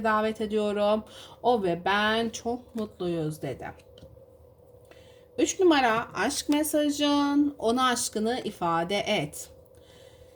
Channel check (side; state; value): both; identical; correlation 1.00